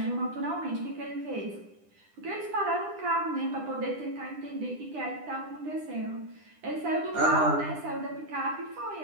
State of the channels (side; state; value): left; late; 10 ms